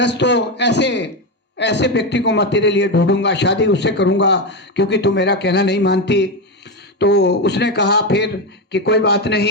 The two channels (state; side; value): normal; both; correlation 0.12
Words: हो, ऐसे ऐसे व्यक्ति को मैं तेरे लिए ढूंढूंगा, शादी उससे करूंगा, क्योंकि तू मेरा कहना नहीं मानती। तो उसने कहा फिर कि कोई बात